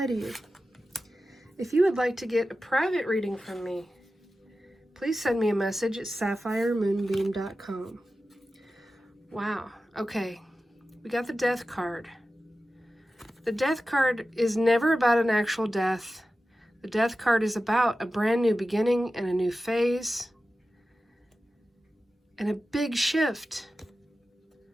to you. If you would like to get a private reading from me, please send me a message at sapphiremoonbeam.com. Wow, okay. We got the Death card. The Death card is never about an actual death. The Death card is about a brand new beginning and a new phase and a big shift.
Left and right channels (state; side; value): normal; both; correlation 0.94